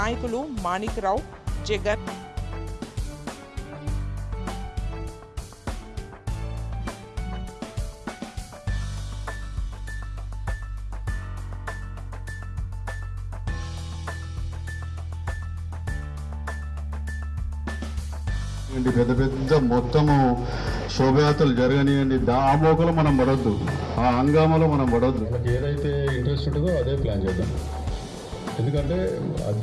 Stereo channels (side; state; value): both; identical; correlation 1.00